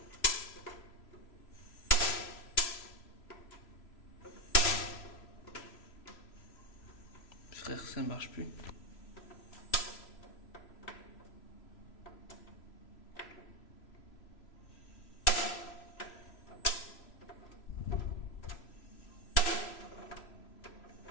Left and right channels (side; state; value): right; late; 3.0 ms